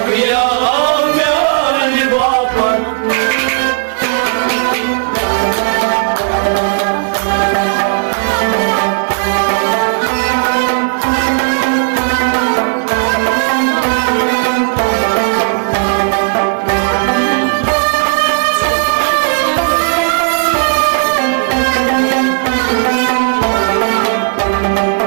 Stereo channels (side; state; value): left; silent; digital silence